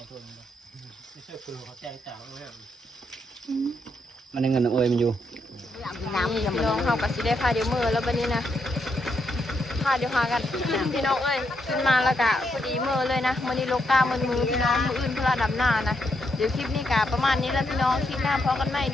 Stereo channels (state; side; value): normal; both; correlation 0.79